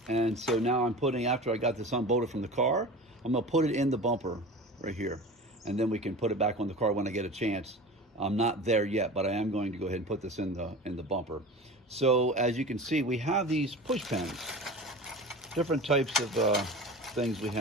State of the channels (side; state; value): both; normal; correlation 0.34